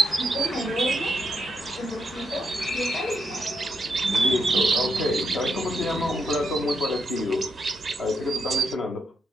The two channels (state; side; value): normal; both; correlation 0.81